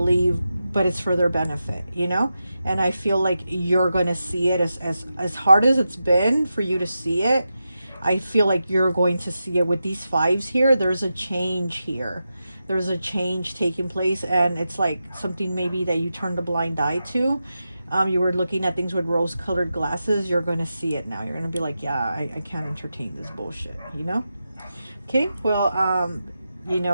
but it's for their benefit, you know? And I feel like you're going to see it as hard as it's been for you to see it. I feel like you're going to see it with these fives here. There's a change here. There's a change taking place, and it's like something maybe that you turned a blind eye to. You were looking at things with rose-colored glasses. You're going to see it now. You're going to be like, yeah, I can't entertain this bullshit, you know? Okay, well, you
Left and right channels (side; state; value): both; inverted; correlation -0.90